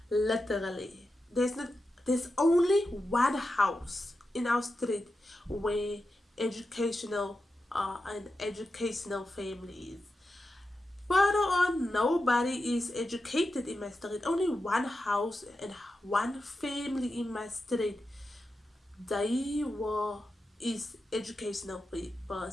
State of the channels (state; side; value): normal; both; correlation 0.90